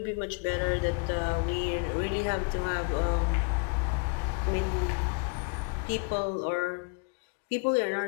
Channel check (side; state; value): right; quieter; 34.0 dB